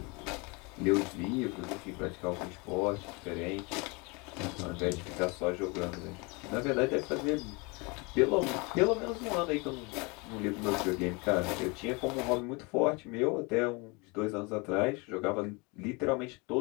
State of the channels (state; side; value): quieter; right; 28.5 dB